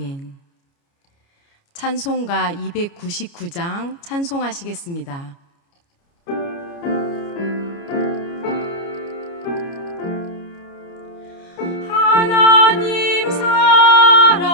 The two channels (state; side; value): late; right; 29 ms